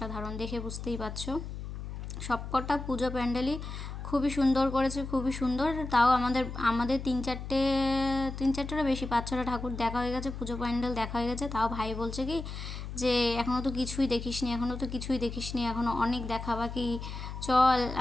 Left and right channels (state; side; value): noise; left; hum, 8 dB below the sound